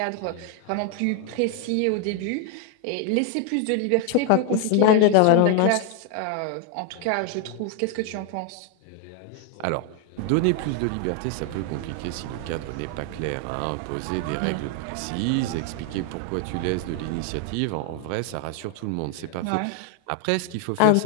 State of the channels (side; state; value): both; different; correlation 0.00